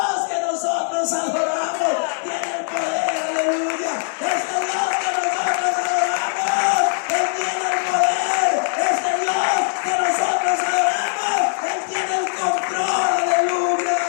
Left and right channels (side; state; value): right; silent; digital silence